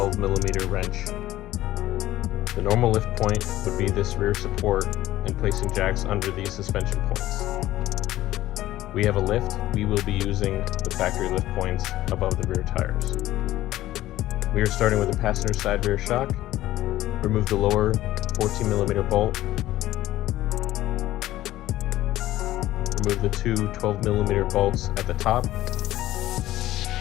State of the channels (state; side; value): quieter; right; 15.0 dB